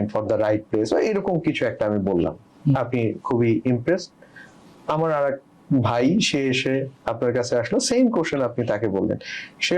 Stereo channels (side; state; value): both; identical; correlation 1.00